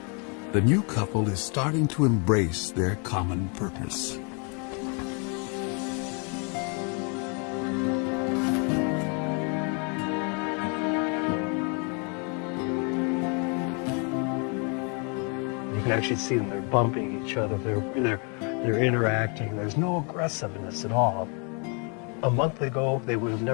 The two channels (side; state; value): right; quieter; 35.9 dB